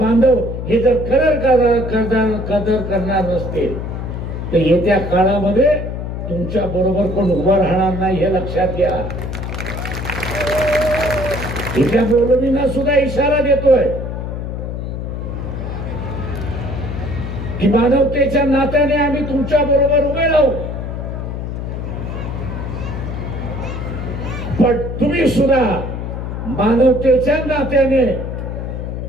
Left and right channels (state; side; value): noise; left; hum, 5 dB below the sound